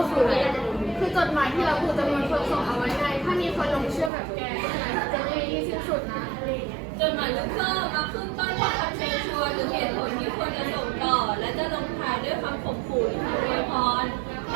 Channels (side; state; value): left; drops out; at 4.1 s